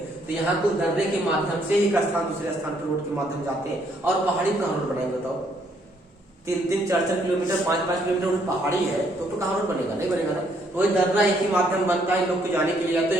तो यहाँ को दर्रे के माध्यम से एक स्थान दूसरे स्थान पर रोड के माध्यम जाते हैं। और पहाड़ी कहाँ रोड बनाएंगे बताओ? 3-3, 4-4 किलोमीटर, 5-5 किलोमीटर पहाड़ी है, तो कहाँ रोड बनेगा? नहीं बनेगा ना। तो वही दर्रा एक ही माध्यम बनता है लोग को जाने के लिए।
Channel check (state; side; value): normal; both; correlation 0.69